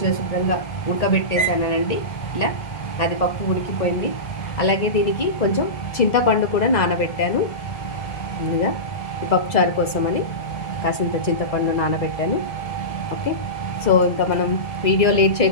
శుభ్రంగా ఉడకబెట్టేసానండి. ఇలా అది పప్పు ఉడికిపోయింది. అలాగే దీనికి కొంచెం చింతపండు కూడా నానబెట్టాను. ముందుగా ఈ పప్పుచారు కోసమని కాసింత చింతపండు నానబెట్టాను. ఓకే, సో ఇంకా మనం వీడియో లేట్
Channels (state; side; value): late; right; 1.9 ms